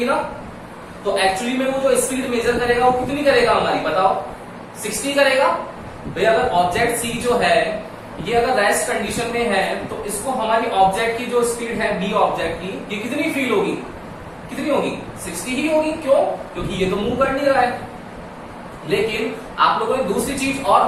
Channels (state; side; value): identical; both; correlation 1.00